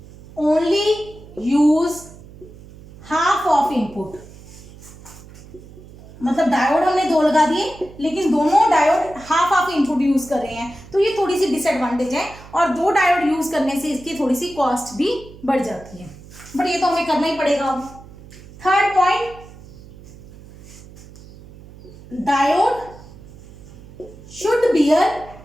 only use half of input. मतलब डायोड हमने 2 लगा दिए, लेकिन दोनों diode half of input use कर रहे हैं, तो ये थोड़ी सी डिसएडवांटेज है। और 2 डायोड यूज करने से इसकी थोड़ी सी कॉस्ट भी बढ़ जाती है, बट ये तो हमें करना ही पड़ेगा। अब third point, diode should bear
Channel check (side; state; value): right; noise; hum, 19 dB below the sound